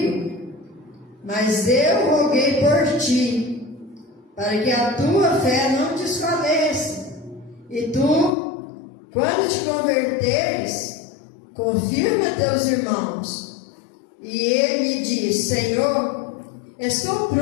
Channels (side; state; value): right; drops out; at 8.3 s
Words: mas eu roguei por ti, para que a tua fé não desfaleça. E tu, quando te converteres, confirma teus irmãos. E ele lhe disse: Senhor, estou